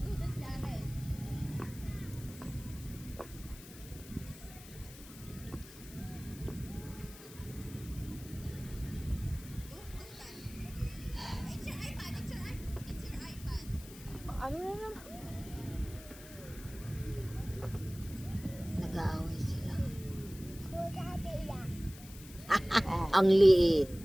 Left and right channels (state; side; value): noise; left; hiss, 17 dB below the sound